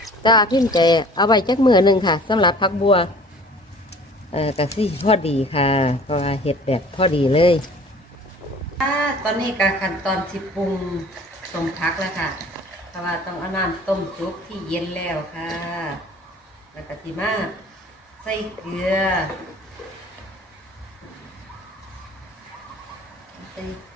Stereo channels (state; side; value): normal; both; correlation 0.48